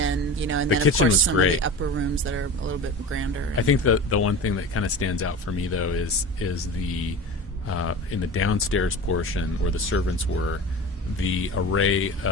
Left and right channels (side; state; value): both; normal; correlation 0.33